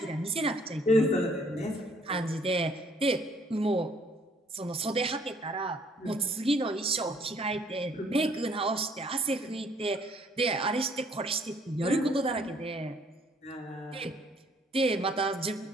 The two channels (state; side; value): normal; both; correlation 0.62